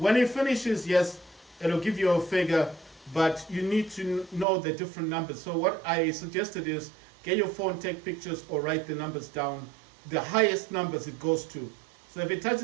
it finishes, yes, it'll give you a figure, but you need to know the different numbers. So what I suggested is get your phone, take pictures, or write the numbers down, the highest numbers it goes to. So if it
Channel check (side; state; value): left; drops out; at 4.5 s